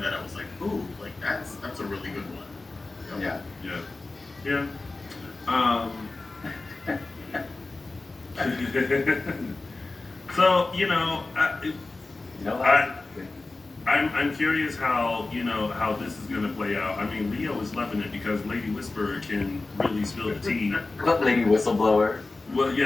that, I was like, ooh, like that's a really good one. Yeah. So I'm curious how this is going to play out. I mean, Leo is loving it because Lady Whisperer can really spill the tea. Lady Whistleblower. Well,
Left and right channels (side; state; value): right; quieter; 3.4 dB